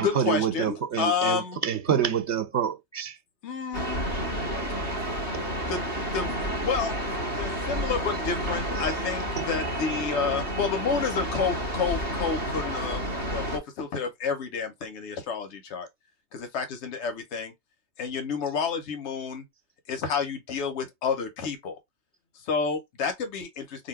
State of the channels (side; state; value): right; late; 3.3 ms